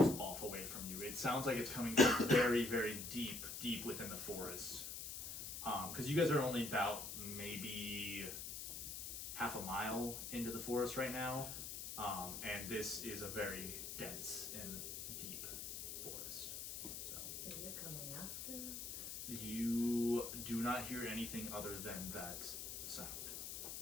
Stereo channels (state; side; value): noise; left; hiss, 6 dB below the sound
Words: off away from you. It sounds like it's coming from very deep within the forest. Because you guys are only about maybe half a mile into the forest right now, and this is a very dense and deep forest. So Is it coming after? you do not hear anything other than that sound.